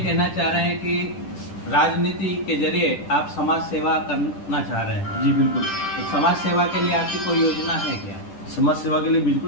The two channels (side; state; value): right; late; 10 ms